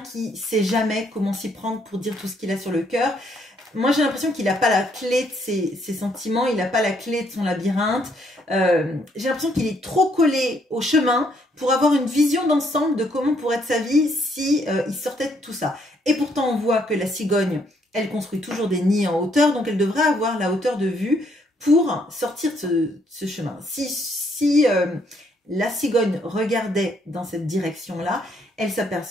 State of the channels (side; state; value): both; normal; correlation 0.70